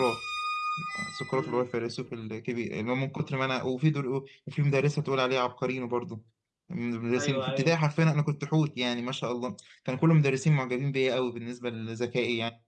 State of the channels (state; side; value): identical; both; correlation 1.00